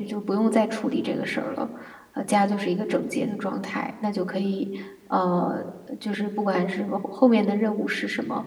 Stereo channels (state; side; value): identical; both; correlation 1.00